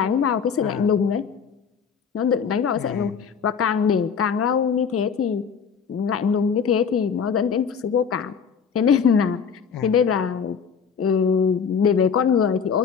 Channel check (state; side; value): quieter; right; 6.6 dB